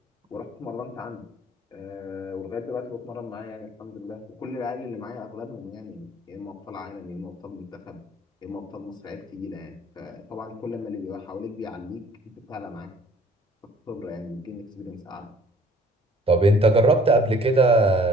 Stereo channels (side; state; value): both; normal; correlation 0.55